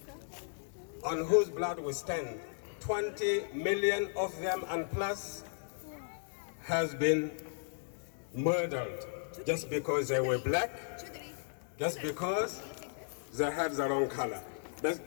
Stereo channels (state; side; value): silent; right; digital silence